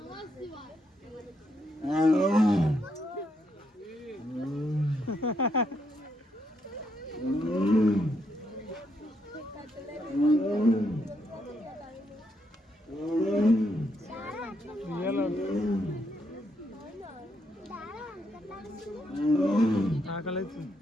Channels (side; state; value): both; normal; correlation 0.77